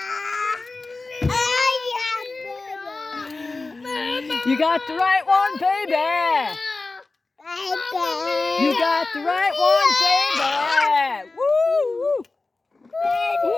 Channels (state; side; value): quieter; right; 3.5 dB